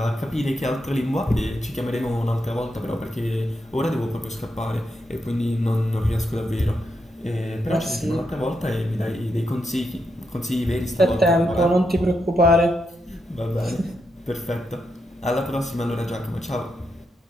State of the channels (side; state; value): both; normal; correlation 0.83